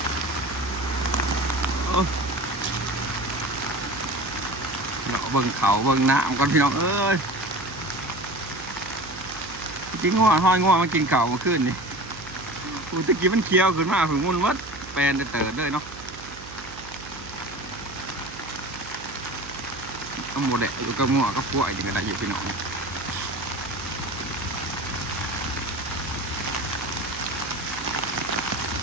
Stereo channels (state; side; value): noise; right; hum, 16 dB below the sound